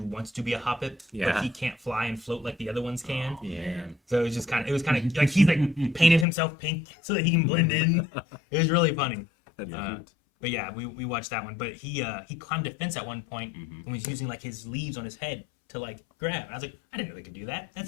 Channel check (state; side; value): drops out; right; at 6.2 s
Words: wants to be a Hoppip, Yeah. but he can't fly and float like the other ones can. Oh, man. So it was kind of like he's like painted himself pink so that he can blend in. It was really funny. Yeah. But yeah, we watched that one. But he climbed a fence at one point and was using like his leaves on his head to like grab. I was like, I didn't know they could do that.